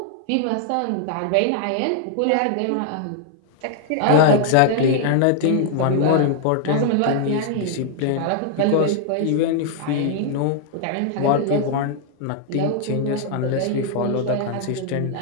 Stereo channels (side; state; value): both; different; correlation 0.00